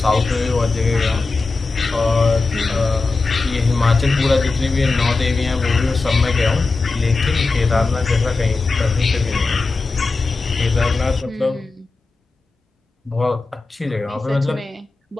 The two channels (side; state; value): right; quieter; 3.8 dB